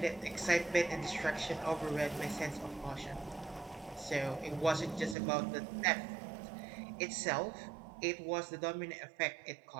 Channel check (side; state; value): left; drops out; at 5.2 s